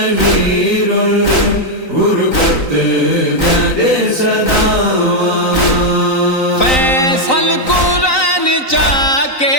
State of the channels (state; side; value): late; right; 3.9 ms